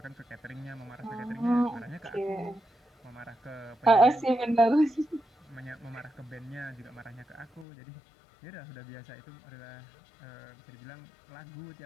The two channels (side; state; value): right; drops out; at 7.7 s